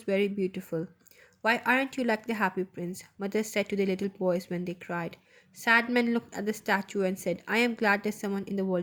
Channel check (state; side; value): identical; both; correlation 1.00